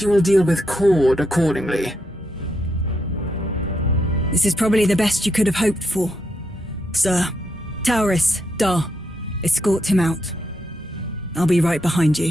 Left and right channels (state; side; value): normal; both; correlation 0.80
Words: you will deal with Cord accordingly. This is probably the best you could have hoped for. Sir, Tauris, Dar, escort him out. I'll be right behind